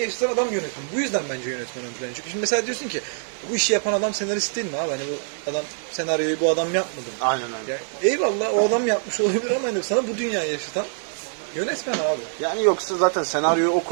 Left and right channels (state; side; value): silent; left; digital silence